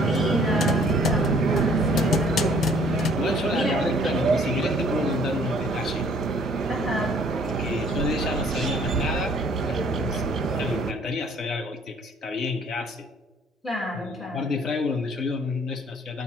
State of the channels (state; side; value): normal; both; correlation 0.58